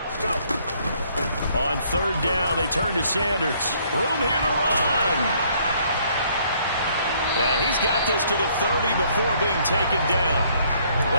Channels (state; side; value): inverted; both; correlation -0.65